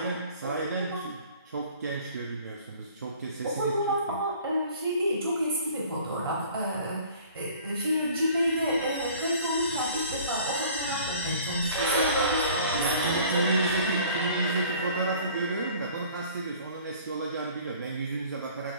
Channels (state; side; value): inverted; both; correlation -0.50